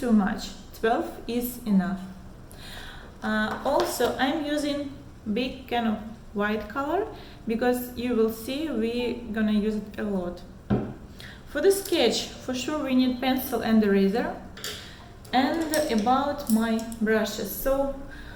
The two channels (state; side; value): identical; both; correlation 1.00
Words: much. 12 is enough. Also, I'm using big kind of white color because you will see we're gonna use it a lot. For the sketch, for sure we need pencil and eraser. And about my brushes, so